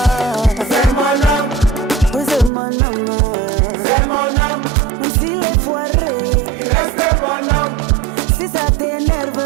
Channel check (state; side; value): drops out; left; at 2.5 s